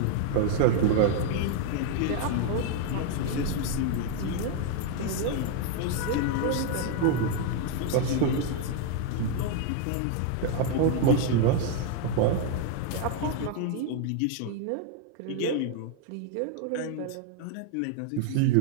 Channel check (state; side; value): different; both; correlation 0.00